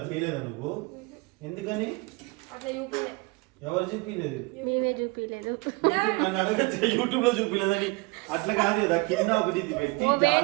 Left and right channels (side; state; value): left; quieter; 25.8 dB